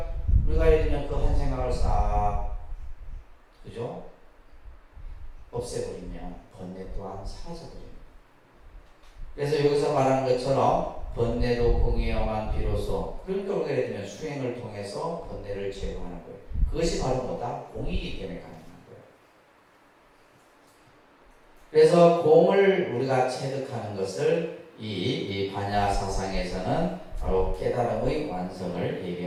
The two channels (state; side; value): identical; both; correlation 1.00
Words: 우리가 예를 들면 그 한 생각을 싹 그죠? 없애버리면 번뇌 또한 사라져버립니다. 그래서 여기서 말하는 것처럼 번뇌도 공이어만 비로소 그러니까 우리가 예를 들면 수행을 통해서 번뇌를 제거하는 거예요. 그것이 바로 뭐다? 공이기 때문에 가능한 거예요. 그래서 공을 우리가 체득하는 것을 이 반야 사상에서는 바로 깨달음의 완성을